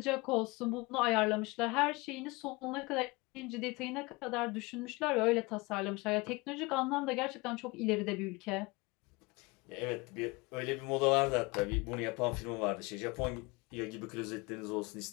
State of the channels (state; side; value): quieter; right; 25.0 dB